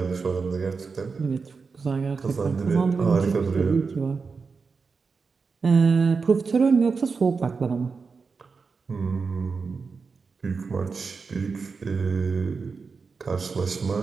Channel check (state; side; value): quieter; left; 4.9 dB